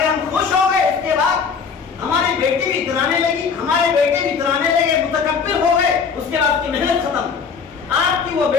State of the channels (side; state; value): right; quieter; 5.9 dB